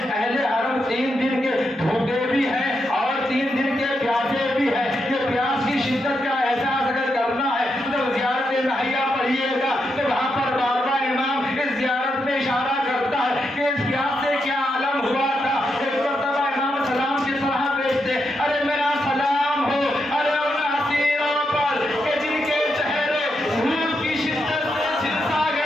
حرم 3 دن کے بھوکے بھی ہیں اور 3 دن کے پیاسے بھی ہیں۔ یہ پیاس کی شدت کا احساس اگر کرنا ہے تو زیارت نہیہ پڑھیے گا تو وہاں پر بار بار امام اس زیارت میں اشارہ کرتا ہے کہ اس پیاس سے کیا عالم ہوا تھا۔ ایک مرتبہ امام سلام کی طرح بیچتے، ارے میرا سلام ہو، ارے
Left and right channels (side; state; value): both; normal; correlation 0.83